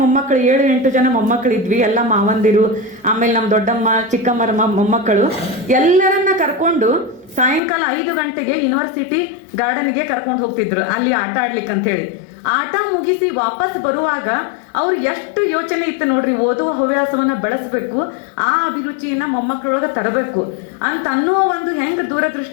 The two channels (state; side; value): drops out; right; at 7.6 s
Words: ಮೊಮ್ಮಕ್ಕಳು 7-8 ಜನ ಮೊಮ್ಮಕ್ಕಳಿದ್ವಿ. ಎಲ್ಲ ಮಾವಂದಿರು, ಆಮೇಲೆ ನಮ್ಮ ದೊಡ್ಡಮ್ಮ ಚಿಕ್ಕಮ್ಮರ ಮೊಮ್ಮಕ್ಕಳು ಎಲ್ಲರನ್ನ ಕರ್ಕೊಂಡು ಸಾಯಂಕಾಲ 5 ಗಂಟೆಗೆ ಯೂನಿವರ್ಸಿಟಿ ಗಾರ್ಡನ್ಗೆ ಕರ್ಕೊಂಡು ಹೋಗ್ತಿದ್ರು ಅಲ್ಲಿ ಆಟ ಆಡ್ಲಿಕ್ಕೆ ಅಂತ ಹೇಳಿ. ಆಟ ಮುಗಿಸಿ ವಾಪಸ್ ಬರುವಾಗ ಅವ್ರು ಎಷ್ಟು ಯೋಚನೆ ಇತ್ತು ನೋಡ್ರಿ, ಓದುವ ಹವ್ಯಾಸವನ್ನ ಬೆಳೆಸ್ಬೇಕು, ಆ ಅಭಿರುಚಿಯನ್ನ ಮೊಮ್ಮಕ್ಕಳೊಳಗೆ ತರಬೇಕು ಅಂತ ಅನ್ನುವ ಒಂದು ಹೆಂಗ್